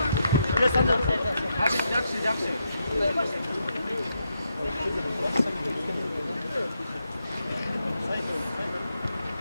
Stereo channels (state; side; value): inverted; both; correlation -0.82